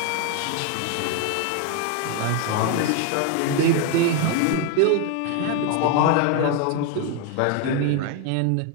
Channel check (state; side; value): different; both; correlation 0.01